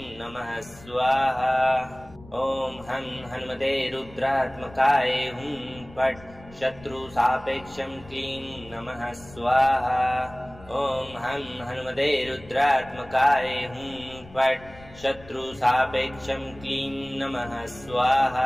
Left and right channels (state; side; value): noise; left; rumble, 21 dB below the sound